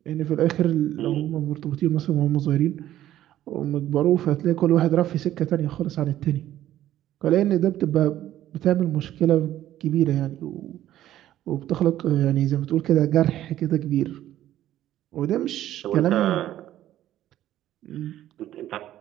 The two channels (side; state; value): left; quieter; 13.0 dB